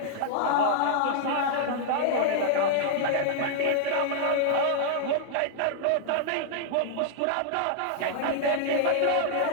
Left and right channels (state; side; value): different; both; correlation -0.01